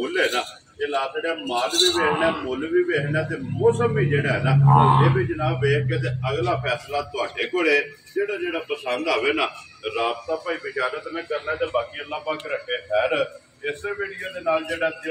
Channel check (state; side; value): identical; both; correlation 1.00